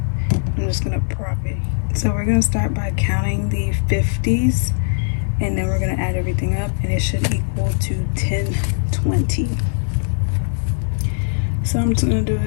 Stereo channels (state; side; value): silent; right; digital silence